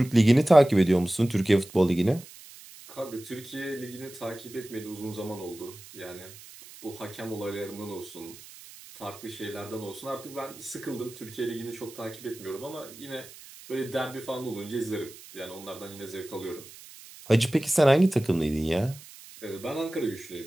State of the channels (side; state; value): right; noise; hiss, 18 dB below the sound